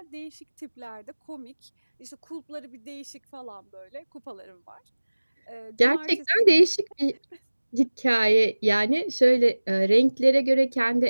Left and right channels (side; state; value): both; inverted; correlation -1.00